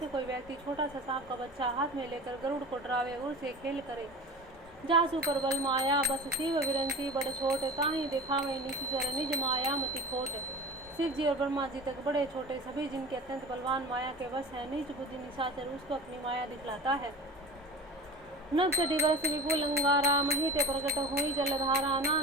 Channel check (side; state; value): both; normal; correlation 0.34